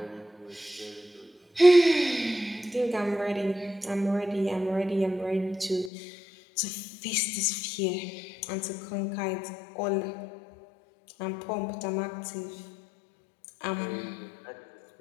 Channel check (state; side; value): drops out; right; at 5.9 s